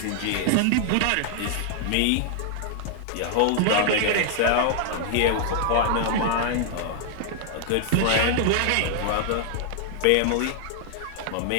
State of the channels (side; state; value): both; different; correlation 0.00